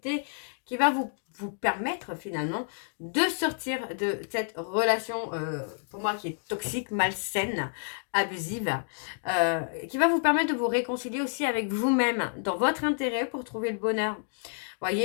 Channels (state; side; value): silent; right; digital silence